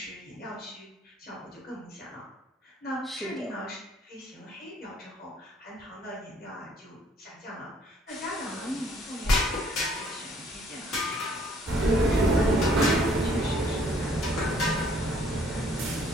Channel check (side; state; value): both; normal; correlation 0.62